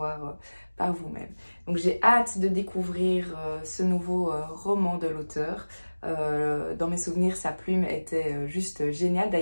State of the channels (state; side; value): inverted; both; correlation -1.00